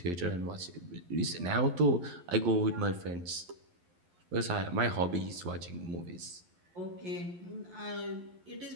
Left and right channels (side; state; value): left; late; 11 ms